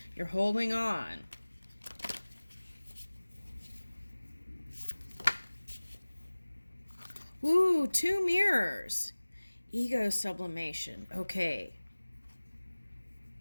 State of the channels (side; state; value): both; inverted; correlation -1.00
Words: You're holding on. Ooh, 2 mirrors. Ego sublimation. Okay.